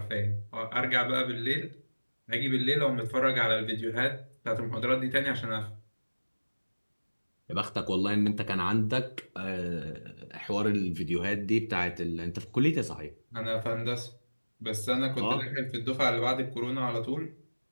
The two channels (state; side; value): inverted; both; correlation -1.00